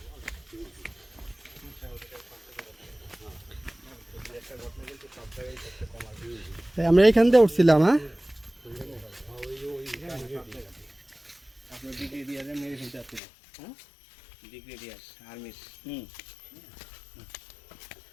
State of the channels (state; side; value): drops out; right; at 13.2 s